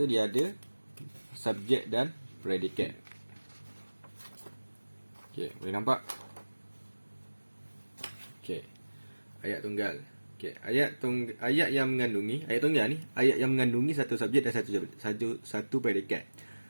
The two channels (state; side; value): inverted; both; correlation -1.00